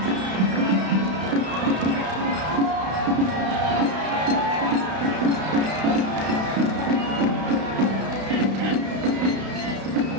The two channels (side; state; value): left; late; 32 ms